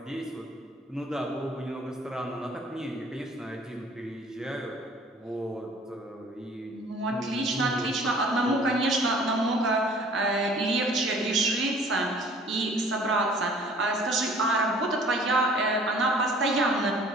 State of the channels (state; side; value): normal; both; correlation 0.52